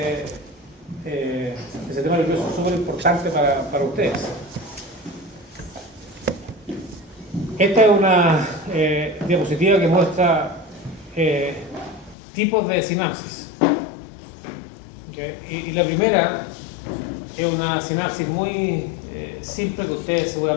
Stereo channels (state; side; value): drops out; right; at 12.2 s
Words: el sistema nervioso es súper importante para ustedes. Esta es una diapositiva que muestra tipos de sinapsis. ¿Okay? Y la primera es una sinapsis muy simple que ustedes